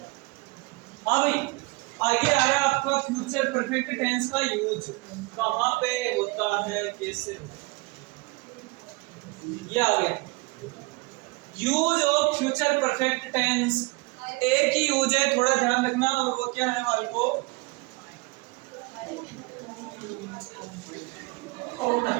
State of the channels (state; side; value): quieter; left; 25.9 dB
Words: हाँ भाई, आगे आ रहा है आपका फ्यूचर परफेक्ट टेंस का यूज कहाँ पे होता है, कैसे होता है। ये आ गया use of future perfect tense. एक ही यूज है, थोड़ा ध्यान रखना, और वो क्या है वाले को